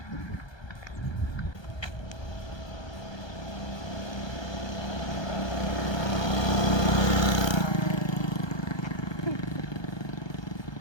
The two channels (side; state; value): right; late; 1.2 ms